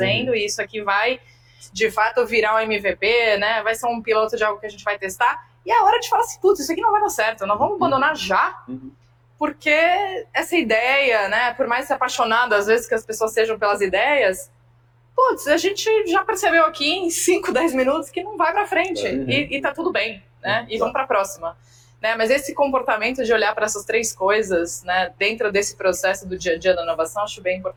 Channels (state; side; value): identical; both; correlation 1.00